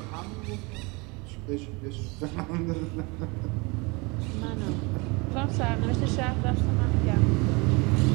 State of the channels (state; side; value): quieter; left; 27.5 dB